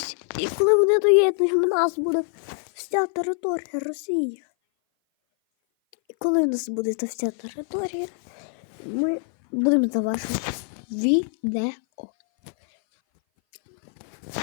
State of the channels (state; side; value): silent; right; 58 dB below the other